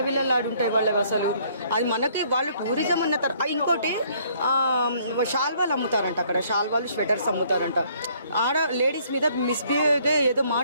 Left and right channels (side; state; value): both; inverted; correlation -0.63